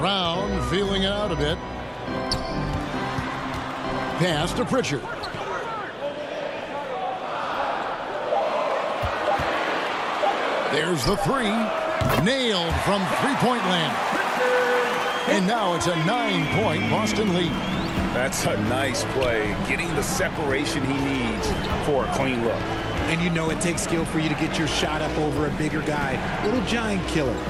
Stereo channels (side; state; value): both; identical; correlation 1.00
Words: feeling it out a bit. Pass to Pritchard. There's the 3. Nailed from three-point land. And now it's a 9-point Boston lead. That's a nice play, getting the separation he needs for a clean look. And you know it takes skill for you to get your shot up over a bigger guy. Little giant killer.